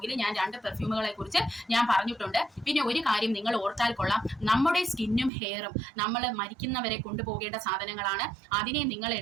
ഞാൻ 2 പെർഫ്യൂമുകളെ കുറിച്ച് ഞാൻ പറഞ്ഞിട്ടുണ്ട്. പിന്നെ ഒരു കാര്യം നിങ്ങൾ ഓർത്താൽ കൊള്ളാം, നമ്മുടെ സ്കിന്നും ഹെയറും നമ്മൾ മരിക്കുന്നവരെ കൊണ്ടുപോകേണ്ട സാധനങ്ങളാണ്. അതിനെ നിങ്ങൾ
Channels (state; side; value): drops out; left; at 5.3 s